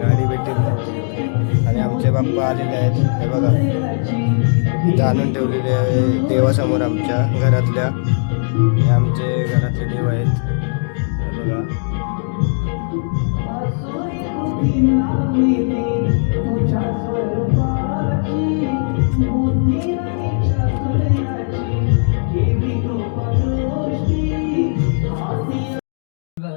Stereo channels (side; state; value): right; silent; digital silence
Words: भेटली नव्हती. आणि आमचे बाप्पा आलेले आहेत, हे बघा इथं आणून ठेवलेले आहे देवासमोर आमच्या घरातल्या. हे आमचे घरातले देव आहेत, हे बघा.